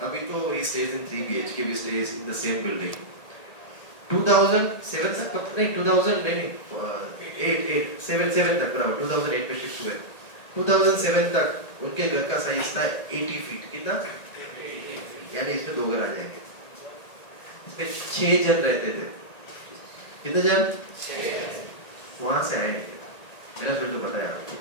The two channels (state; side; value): late; right; 1.8 ms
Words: अभी तो ही stays in 3 BHK, we stays in the same building. 2007 तक नहीं, 2000 नहीं, 7 तक, बराबर 2008 में शिफ्ट हुए। 2007 तक उनके घर का साइज था 80 फीट। कितना? यानी इसमें 2 घर आ जाएंगे। इसमें 6 जन रहते थे। कितने जन? 6। वहां से आए मेरा फिर तो पता है आपको।